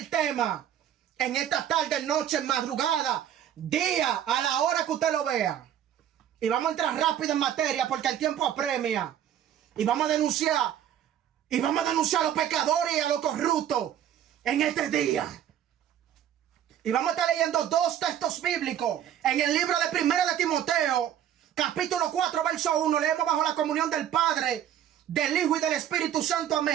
tema en esta tarde, noche, madrugada, día, a la hora que usted lo vea. Y vamos a entrar rápido en materia porque el tiempo apremia. Y vamos a denunciar a los pecadores y a los corruptos en este día. Y vamos a estar leyendo dos textos bíblicos en el libro de 1 de Timoteo, capítulo 4, verso 1. Leemos bajo la comunión del Padre, del Hijo y del Espíritu Santo.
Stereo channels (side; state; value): left; quieter; 10.5 dB